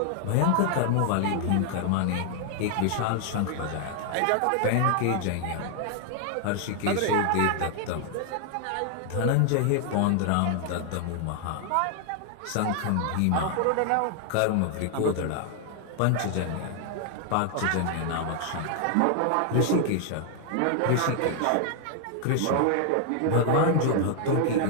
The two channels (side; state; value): both; different; correlation 0.00